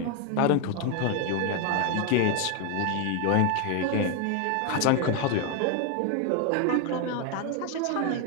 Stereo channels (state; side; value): different; both; correlation 0.01